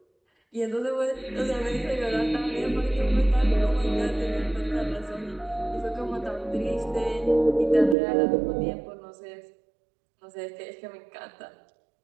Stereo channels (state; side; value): drops out; left; at 8.0 s